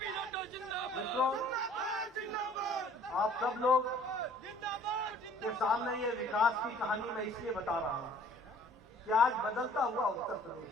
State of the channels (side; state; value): both; normal; correlation 0.54